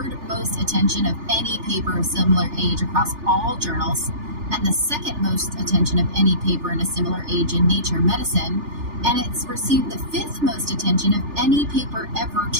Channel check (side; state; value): left; late; 3.3 ms